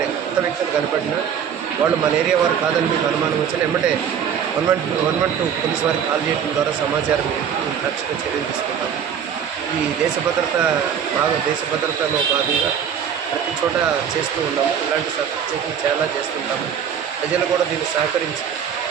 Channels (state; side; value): quieter; left; 8.1 dB